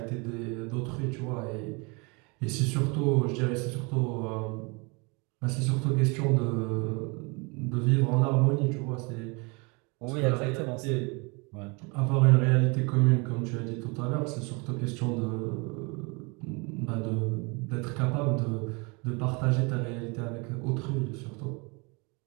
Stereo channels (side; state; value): left; quieter; 29.9 dB